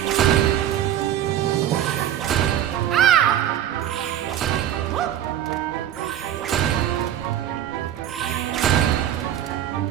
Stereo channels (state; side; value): quieter; left; 11.2 dB